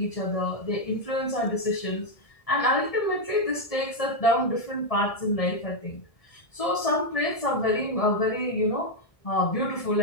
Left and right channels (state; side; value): late; right; 1.7 ms